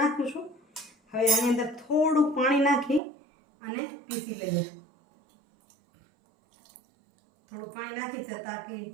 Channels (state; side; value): drops out; left; at 3.0 s